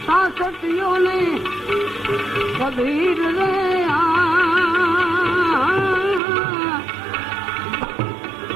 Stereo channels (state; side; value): drops out; left; at 6.2 s